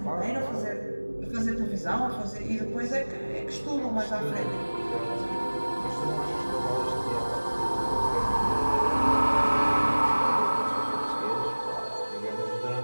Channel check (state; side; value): inverted; both; correlation -1.00